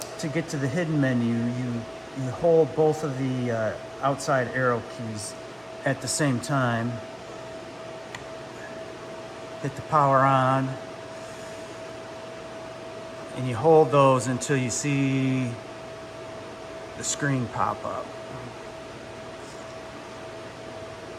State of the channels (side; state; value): both; identical; correlation 1.00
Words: to get to the hidden menu, you hold both of the outside arrow keys at the same time. Hit the power on. and you hold those until you see the screen pop up.